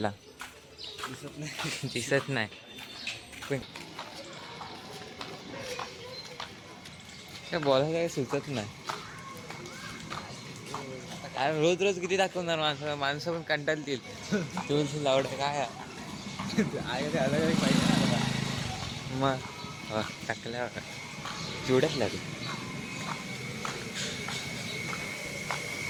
दिसत नाही पण काय बोलायला काही सुचत नाही रोज रोज किती दाखवणार माणसं पण कंटाळतील तुळशी लावड काय मग टाकल्या चिवड्यात लागेल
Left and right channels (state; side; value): identical; both; correlation 1.00